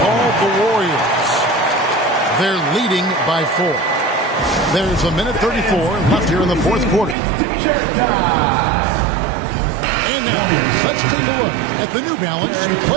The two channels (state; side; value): drops out; left; at 7.2 s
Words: called the Warriors. They're leading by 4. There's 1:34 left here in the fourth quarter. And now, let's take a look at the New Balance